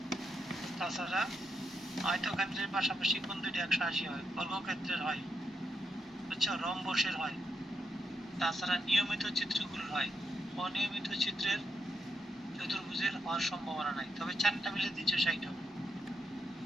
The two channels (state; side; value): normal; both; correlation 0.80